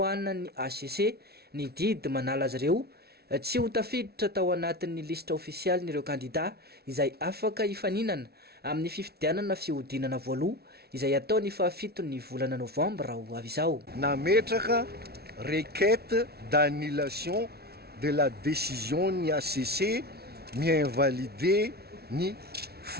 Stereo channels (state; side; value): late; left; 0.46 ms